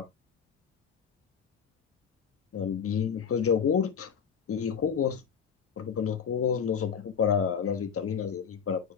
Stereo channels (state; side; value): quieter; right; 7.2 dB